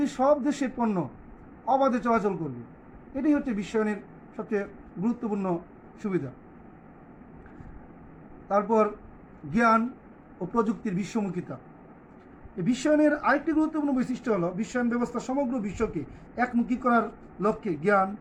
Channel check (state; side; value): identical; both; correlation 1.00